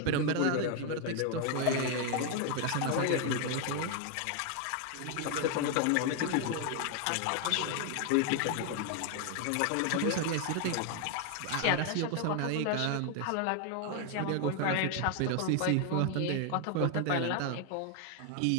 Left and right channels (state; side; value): different; both; correlation 0.00